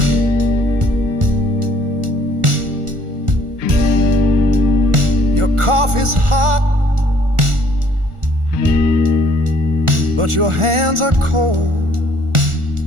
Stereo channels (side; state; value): left; late; 1.4 ms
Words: Your coffee's hot, but your hands are cold.